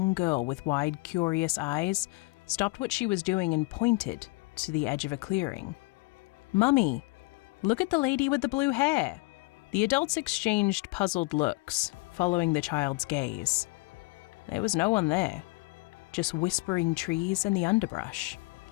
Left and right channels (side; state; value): right; quieter; 24.5 dB